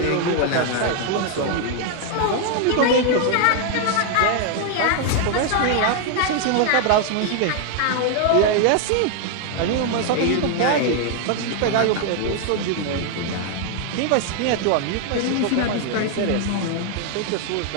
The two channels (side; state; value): both; different; correlation 0.00